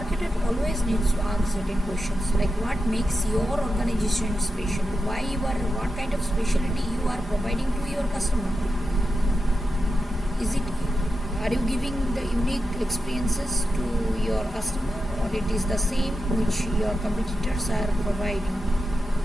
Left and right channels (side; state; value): both; normal; correlation 0.89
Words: always needs to ask certain questions like what makes your organization special, what kind of specialty you are providing to your customer. Are you giving the unique experiences to your customer, or it is the same which your competitors are providing?